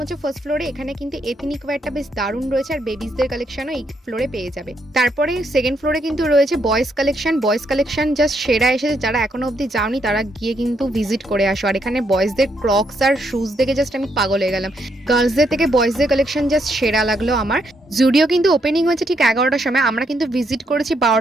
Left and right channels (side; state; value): both; normal; correlation 0.76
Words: হচ্ছে ফার্স্ট ফ্লোরে। এখানে কিন্তু এথনিক ওয়্যারটা বেশ দারুণ রয়েছে, আর বেবিসদের কালেকশনও এই ফ্লোরে পেয়ে যাবে। তারপরে সেকেন্ড ফ্লোরে কিন্তু রয়েছে boys collection. Boys collection just সেরা এসেছে, যারা এখনো অব্দি যাওনি তারা গিয়ে কিন্তু ভিজিট করে আসো। আর এখানে বয়েজদের ক্রক্স আর শুজ দেখে জাস্ট আমি পাগল হয়ে গেলাম। গার্লসদের থেকে বয়েজদের কালেকশন জাস্ট সেরা লাগলো আমার। জুডিও কিন্তু ওপেনিং হয়েছে ঠিক 11টার সময়, আমরা কিন্তু ভিজিট করেছি